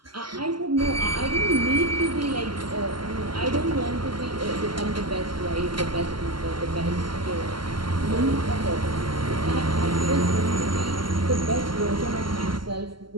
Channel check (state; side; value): late; left; 0.72 ms